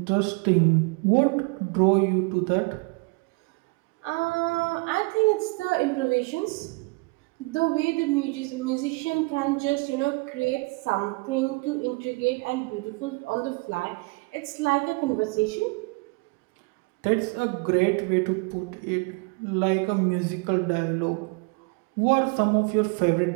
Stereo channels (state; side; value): quieter; left; 27.8 dB